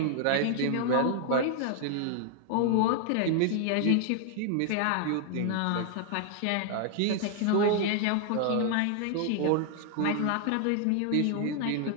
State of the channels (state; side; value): different; both; correlation 0.00